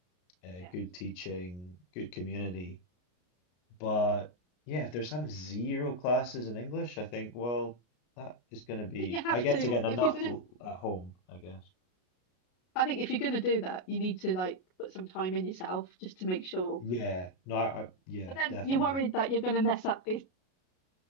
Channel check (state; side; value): late; right; 33 ms